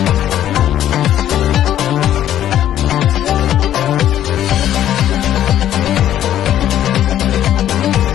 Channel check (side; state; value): right; quieter; 11.7 dB